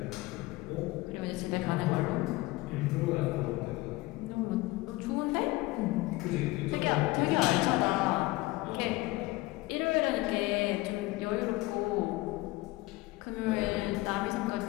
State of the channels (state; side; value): quieter; right; 20.3 dB